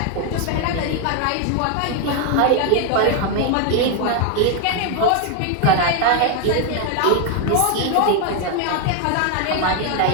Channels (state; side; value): different; both; correlation 0.01